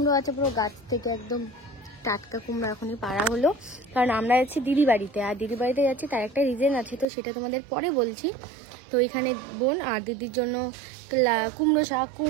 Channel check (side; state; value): left; drops out; at 7.1 s